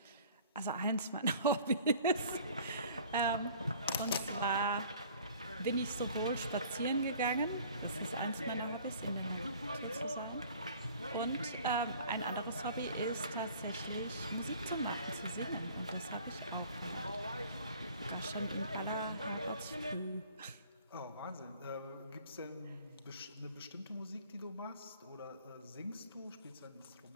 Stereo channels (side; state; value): both; inverted; correlation -0.50